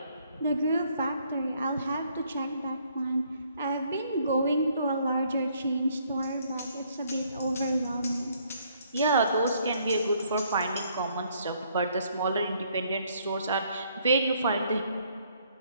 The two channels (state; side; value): inverted; both; correlation -0.67